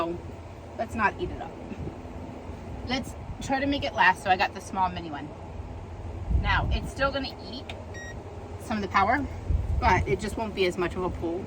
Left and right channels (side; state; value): both; identical; correlation 1.00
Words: let's not eat it up. Let's try to make it last. So I got the small mini one. Now it's still gonna eat some of the power, but it just won't be as much of a pull